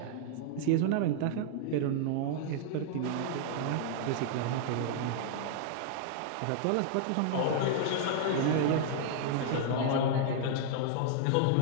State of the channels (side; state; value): both; different; correlation -0.01